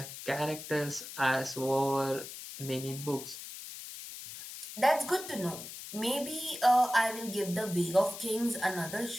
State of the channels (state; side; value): noise; left; hiss, 11 dB below the sound